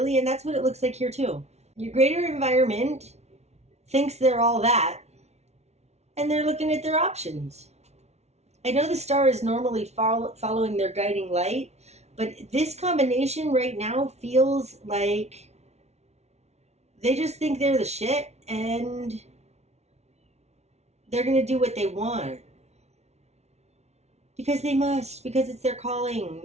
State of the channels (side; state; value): left; late; 0.31 ms